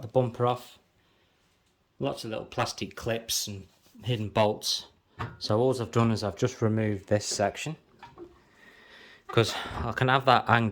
the bumper off. Lots of little plastic clips and hidden bolts. So all I've done is I've just removed this section, because I can have that hang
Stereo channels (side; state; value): both; identical; correlation 1.00